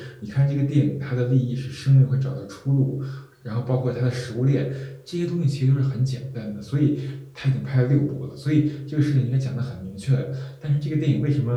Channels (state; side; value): identical; both; correlation 1.00